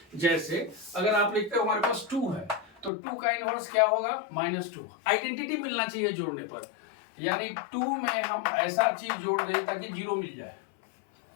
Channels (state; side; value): drops out; right; at 2.9 s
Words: जैसे अगर आप लिखते हो हमारे पास 2 है, तो 2 का इनवर्स क्या होगा? -2। आइडेंटिटी मिलना चाहिए जोड़ने पर, यानी 2 में हम ऐसा चीज जोड़ दें ताकि 0 मिल जाए।